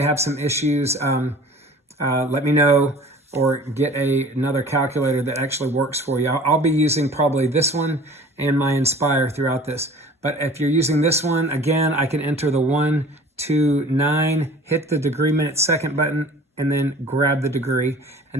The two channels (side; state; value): both; normal; correlation 0.45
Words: have some issues, let me know, or get another calculator that actually works for you. I'll be using probably this one and my Inspire throughout this. But if you're using this one, again, I can enter the 129, hit the degree, minute, second button, and then grab the degree.